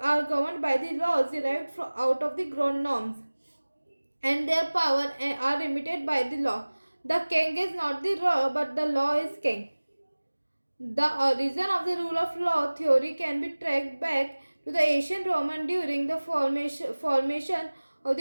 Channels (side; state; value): both; inverted; correlation -1.00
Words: are governed by the laws derived out of the ground norms, and their power are limited by the law. The king is not the law, but the law is king. The origin of the rule of law theory can be tracked back to the ancient Roman during the formation of